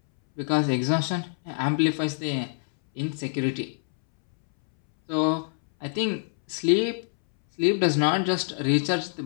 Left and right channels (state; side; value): silent; right; 61 dB below the other